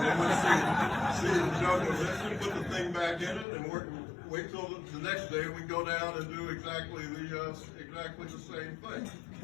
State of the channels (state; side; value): drops out; right; at 3.5 s